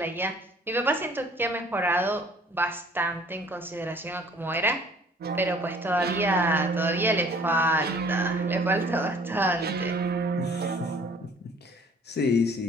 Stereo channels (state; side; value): normal; both; correlation 0.55